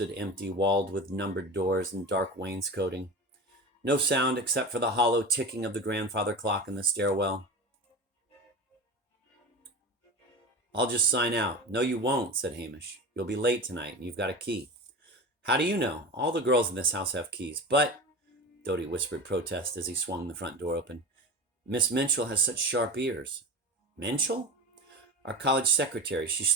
empty, walled with numbered doors and dark wainscoting. No sound except for the hollow ticking of the grandfather clock in the stairwell. "I'll just sign out." "No, you won't," said Hamish. "You'll be late tonight, and you've got a key." "How do you know? All the girls in this house have keys." "But," Dodie whispered protest as he swung the front door open, "Miss Minchell has such sharp ears." "Minchell?" "Our college secretary. She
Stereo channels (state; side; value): normal; both; correlation 0.29